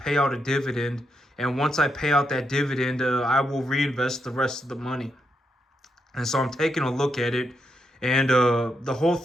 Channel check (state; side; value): normal; both; correlation 0.82